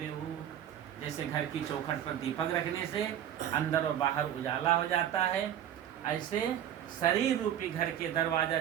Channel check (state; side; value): quieter; left; 10.6 dB